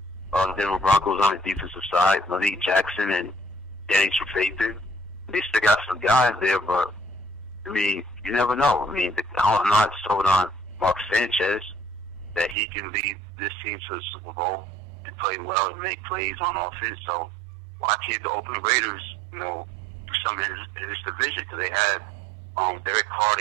Denver Broncos on the defensive side, Malik Jackson and Danny Trevathan. They still got some guys there, but I mean, you never know. I mean, I'm not sold on Mark Sanchez that he can lead this team to the Super Bowl and play well and make plays on offense. So why can't the Oakland Raiders, do something in this division? Because they had Derek Carr,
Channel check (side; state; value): left; drops out; at 12.6 s